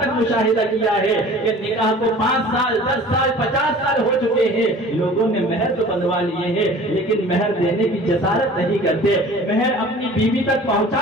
تک مشاہدہ کیا ہے کہ نکاح کو 5 سال 10 سال 50 سال ہو چکے ہیں، لوگوں نے مہر تو بندوا لیے ہیں لیکن مہر دینے کی جسارت نہیں کرتے، مہر اپنی بیوی تک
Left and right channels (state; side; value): normal; both; correlation 0.45